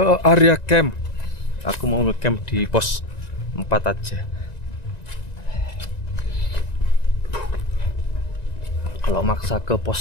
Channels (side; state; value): right; late; 1.9 ms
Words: area camp. Aku mau nge-camp di pos 4 aja. Kalau maksa ke